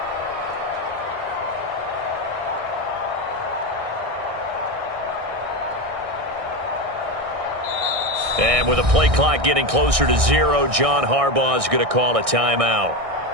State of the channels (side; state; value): left; late; 1.6 ms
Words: And with the play clock getting closer to 0, John Harbaugh is going to call a timeout.